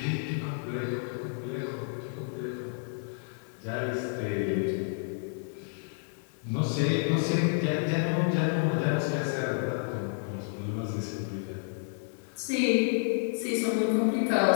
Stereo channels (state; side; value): silent; right; 58 dB below the other